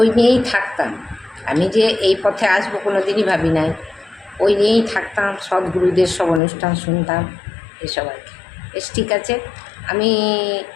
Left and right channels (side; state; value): right; drops out; at 6.4 s